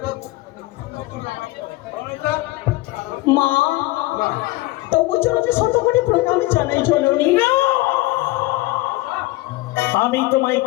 মা তবু চলো যে শত কোটি প্রণাম জানাই জননী। আমি তোমায়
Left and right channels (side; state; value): right; quieter; 19.4 dB